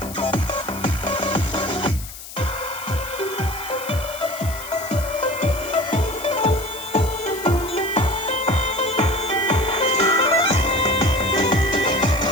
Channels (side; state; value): left; noise; hiss, 13 dB below the sound